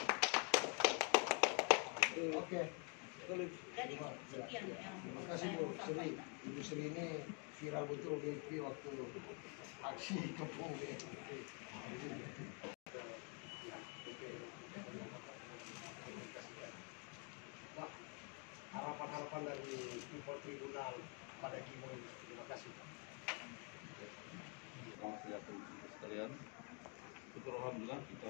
Oke. Jadi sekian yang Terima kasih saya Bu mau Sri. sampaikan. Ibu Sri ini viral betul di FB waktu aksi kepung ini. Pak, harapan-harapan dari Impor Tribunal pada Gimo ini. Terima kasih. Selamat siang teman-teman sekalian. Syukur alhamdulillah kita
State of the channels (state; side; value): quieter; right; 36.7 dB